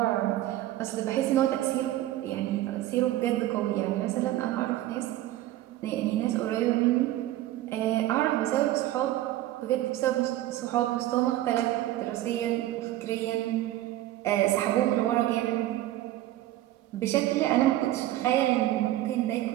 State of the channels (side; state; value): left; quieter; 14.8 dB